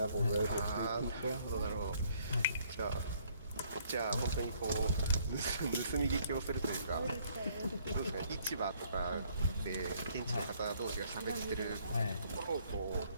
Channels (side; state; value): both; inverted; correlation -0.64